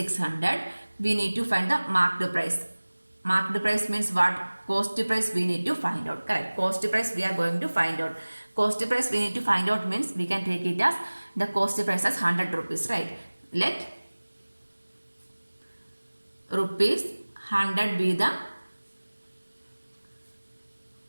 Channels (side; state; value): both; inverted; correlation -1.00